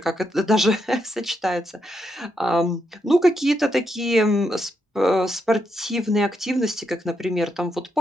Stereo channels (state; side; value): normal; both; correlation 0.81